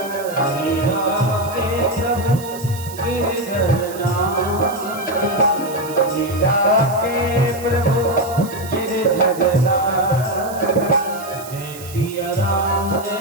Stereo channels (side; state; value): right; noise; hiss, 15 dB below the sound